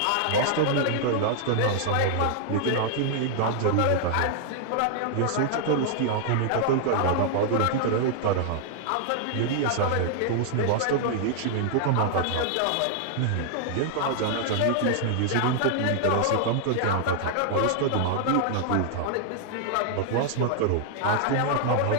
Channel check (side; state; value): both; different; correlation -0.01